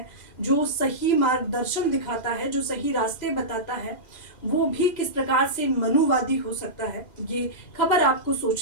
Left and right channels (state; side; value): late; right; 2.0 ms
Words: जो सही मार्गदर्शन दिखाता है, जो सही रास्ते बताता है, वो भी किस प्रकार से मनुवादी हो सकता है। ये खबर आपको